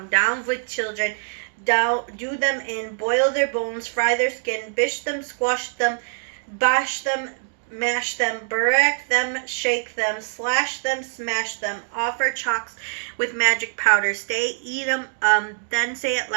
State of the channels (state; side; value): silent; left; digital silence